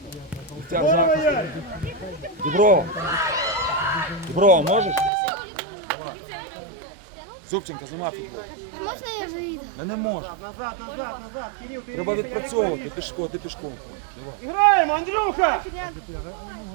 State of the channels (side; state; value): left; drops out; at 5.1 s